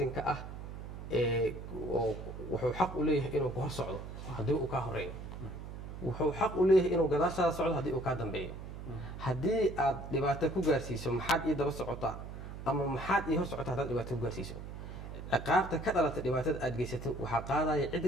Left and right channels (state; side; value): noise; right; hum, 10 dB below the sound